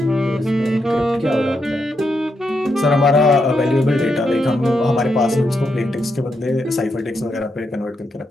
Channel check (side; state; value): both; normal; correlation 0.82